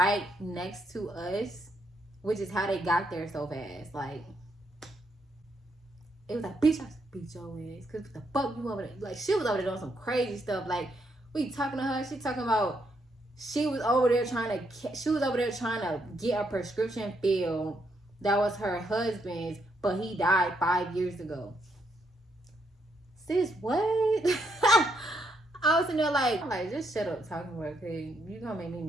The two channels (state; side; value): normal; both; correlation 0.76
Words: next to us, which is how they got there so fast. Like, it was like, bitch, I beat your ass, because the fuck you over there? Like, she was over there doing some crazy stuff. Like, we talking to her, she talking about she was over there trying to get a prescription filled that was her husband's, but he died 5 years ago. Sis, what? I was in there like, just shut up talking to her, because you gonna make me